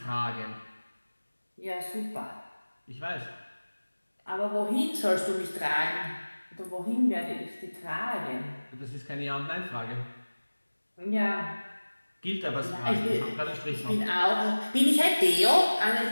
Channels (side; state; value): both; inverted; correlation -1.00